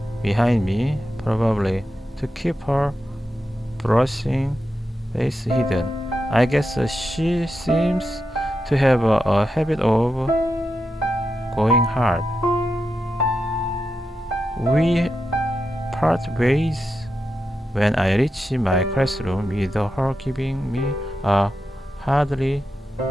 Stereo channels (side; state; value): both; normal; correlation 0.88